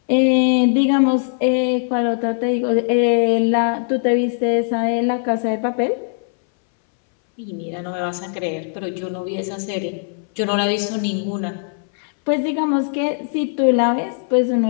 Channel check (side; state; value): right; silent; 63 dB below the other